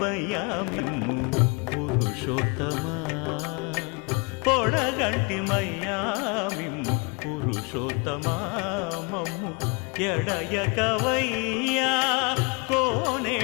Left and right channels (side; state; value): right; quieter; 31.3 dB